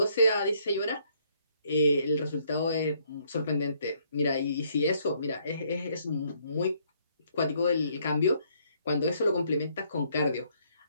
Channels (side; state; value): both; inverted; correlation -0.68